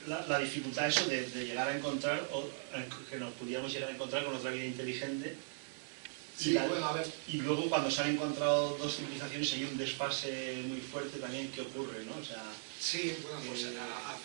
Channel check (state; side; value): silent; left; digital silence